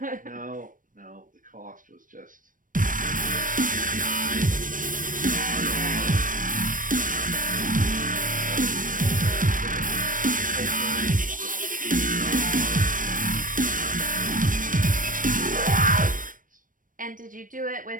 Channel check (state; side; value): late; left; 0.39 ms